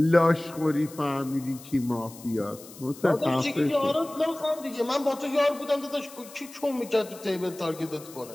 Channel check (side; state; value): left; noise; hiss, 18 dB below the sound